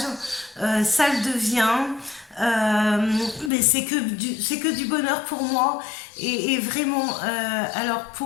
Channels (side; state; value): right; drops out; at 3.5 s